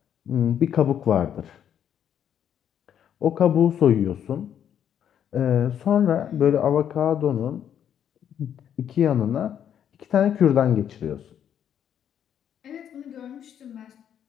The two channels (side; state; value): right; quieter; 9.3 dB